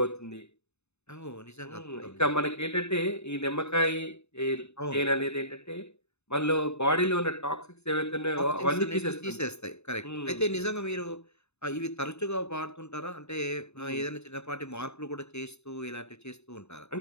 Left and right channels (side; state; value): right; late; 0.81 ms